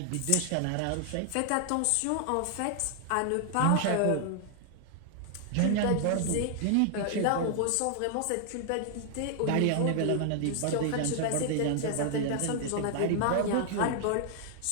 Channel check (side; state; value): both; different; correlation 0.00